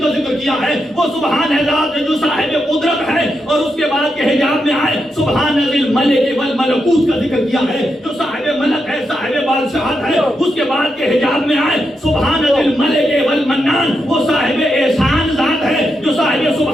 ذکر کیا ہے. وہ سبحان ہے ذات جو صاحب قدرت ہے. اور اس کے بعد کے حجاب میں آئے سبحان ذی الملک والملکوت کا ذکر کیا ہے، جو صاحب ملک ہے، صاحب بادشاہت ہے. اس کے بعد کے حجاب میں آئے سبحان ذی الملک والمنان، وہ صاحب احسان ذات ہے، جو صاحب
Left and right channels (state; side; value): normal; both; correlation 0.84